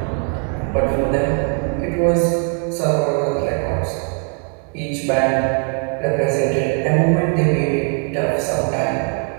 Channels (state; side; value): quieter; left; 38.2 dB